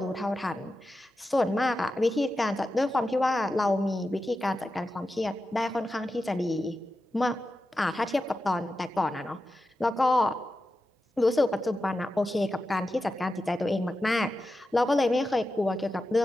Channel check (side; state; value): both; normal; correlation 0.91